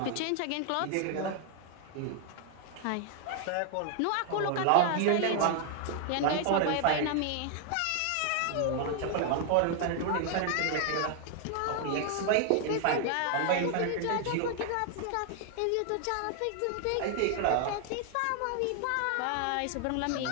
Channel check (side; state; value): both; different; correlation 0.00